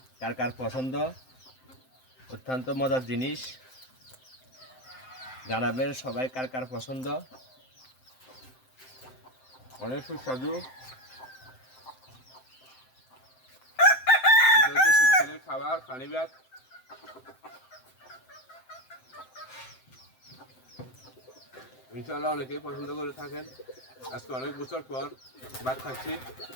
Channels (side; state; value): right; late; 7.7 ms